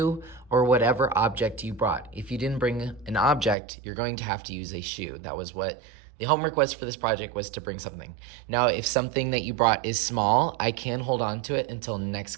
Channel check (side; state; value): left; drops out; at 3.6 s